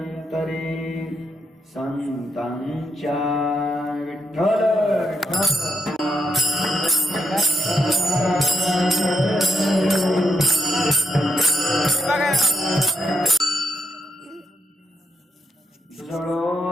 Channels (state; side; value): normal; both; correlation 0.80